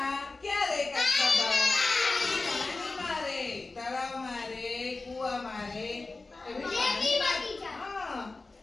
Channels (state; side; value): quieter; right; 3.5 dB